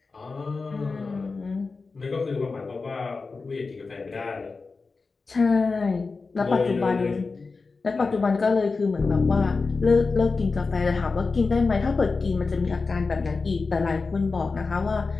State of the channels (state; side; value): quieter; right; 4.2 dB